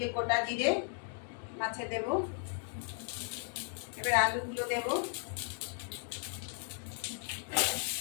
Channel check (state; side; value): silent; right; 54 dB below the other